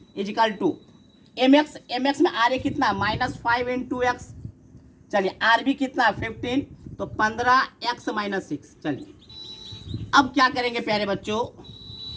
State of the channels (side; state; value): both; identical; correlation 1.00